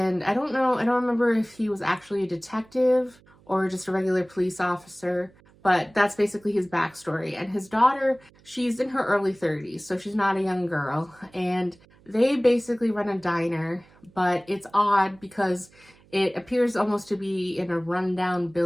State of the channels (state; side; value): noise; right; hum, 28 dB below the sound